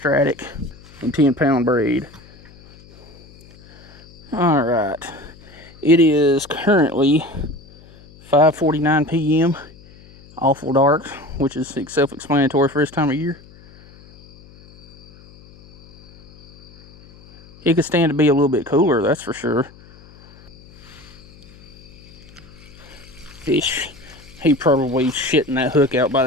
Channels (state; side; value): noise; left; hum, 23 dB below the sound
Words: and 10-pound braid. Alright, It is currently 5:49 p.m. Awful dark, which is self-explanatory for this time of year. It could stand to be a little bit cooler, that's for sure. Fish, he probably shitting that hook out by